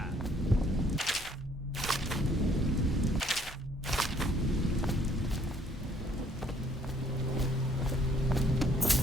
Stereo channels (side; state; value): both; normal; correlation 0.64